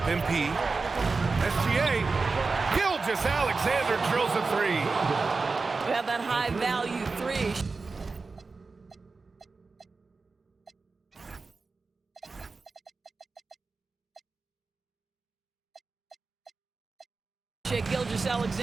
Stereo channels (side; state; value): left; quieter; 4.1 dB